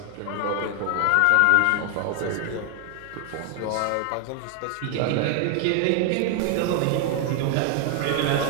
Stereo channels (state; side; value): different; both; correlation 0.00